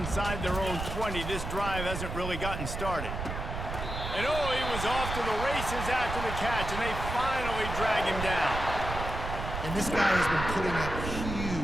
their own 20. This drive hasn't really gotten started. And oh, he was off to the races after the catch, and they finally drag him down. And this guy has been putting up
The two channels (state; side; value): noise; right; rumble, 5 dB below the sound